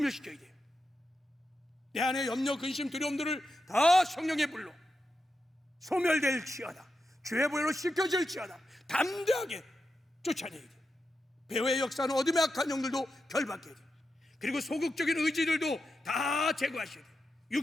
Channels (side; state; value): both; normal; correlation 0.88